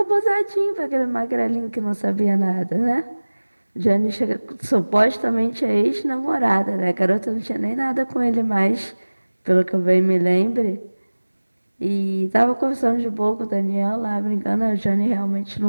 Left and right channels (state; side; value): inverted; both; correlation -1.00